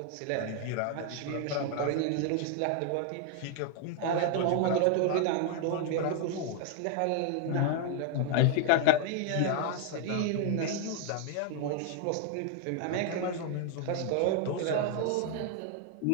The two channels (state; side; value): different; both; correlation 0.00